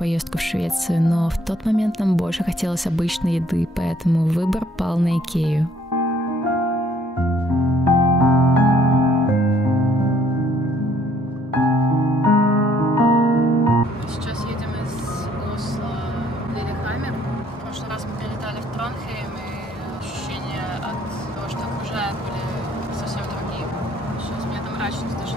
в Швецию, но в тот момент нам больше хотелось обычной еды, поэтому выбор пал на Икею.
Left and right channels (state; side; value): normal; both; correlation 0.63